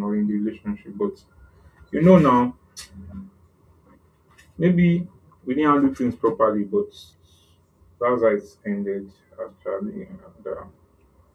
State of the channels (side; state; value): both; identical; correlation 1.00